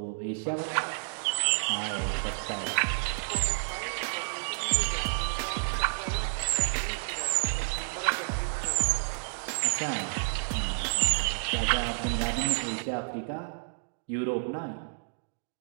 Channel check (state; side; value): silent; left; digital silence